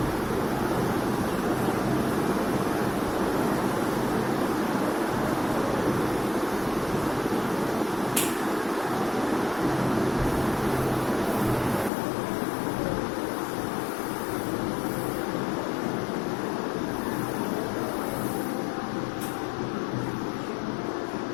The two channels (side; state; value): right; drops out; at 11.9 s